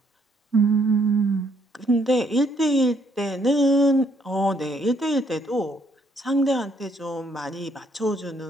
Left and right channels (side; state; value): both; normal; correlation 0.68